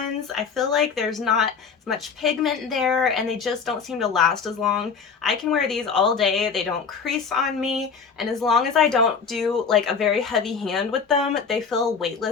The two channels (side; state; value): right; quieter; 5.8 dB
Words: I feel like there's not as much pigment there and they just don't seem to last as long. I can wear these all day, they don't crease on me, and as long as I don't do like a very heavy hand with them, they feel